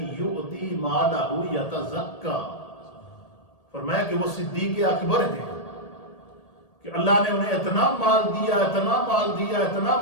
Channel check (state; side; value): late; right; 1.8 ms